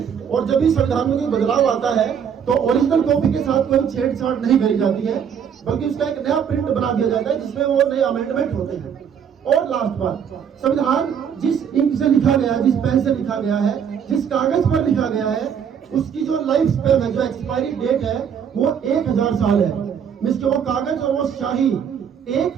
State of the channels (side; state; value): left; quieter; 7.8 dB